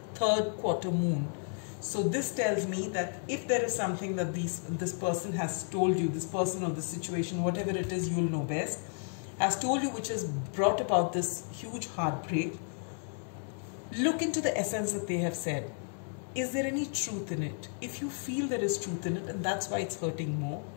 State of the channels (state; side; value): silent; right; 56 dB below the other